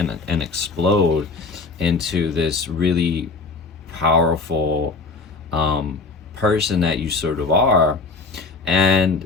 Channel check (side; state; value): right; quieter; 4.0 dB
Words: explode into this really powerful person that you sort of are.